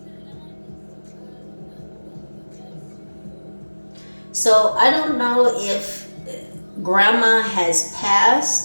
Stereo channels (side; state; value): both; inverted; correlation -1.00